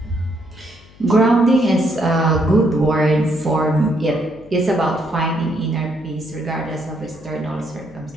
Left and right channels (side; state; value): left; noise; hum, 25 dB below the sound